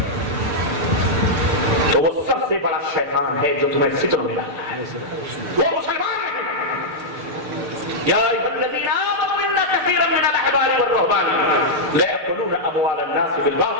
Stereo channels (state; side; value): late; left; 6.7 ms